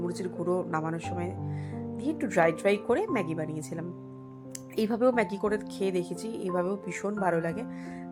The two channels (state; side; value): identical; both; correlation 1.00